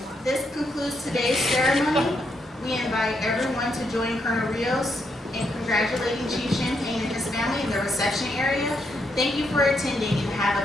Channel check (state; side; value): normal; both; correlation 0.78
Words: This concludes today's ceremony. We invite everyone to join Colonel Rios in congratulating Chief Champagne and his family in the reception area. Thank you for attending and have